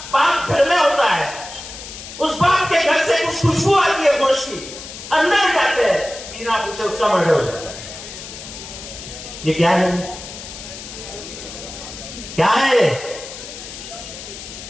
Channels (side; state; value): left; noise; hiss, 12 dB below the sound